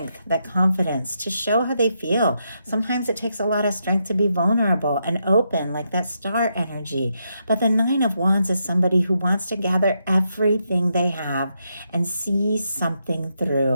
that confidence to show how they feel. Sometimes it takes a lot of strength to be vulnerable and open, like that Star energy. But the Nine of Wands is somebody who wants to gather everything they have and see something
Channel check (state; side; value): inverted; both; correlation -0.81